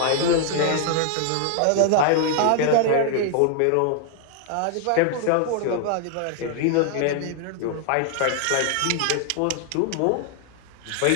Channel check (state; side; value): different; both; correlation 0.00